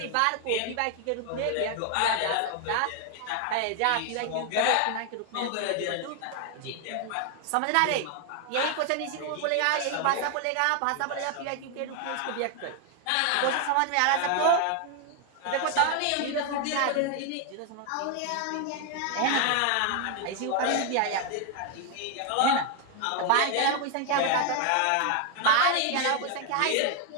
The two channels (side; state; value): both; different; correlation 0.00